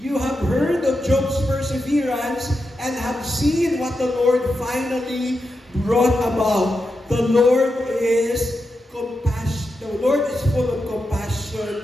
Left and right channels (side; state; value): both; normal; correlation 0.88